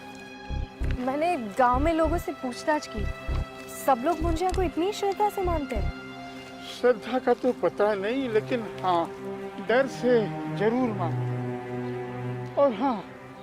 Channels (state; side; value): identical; both; correlation 1.00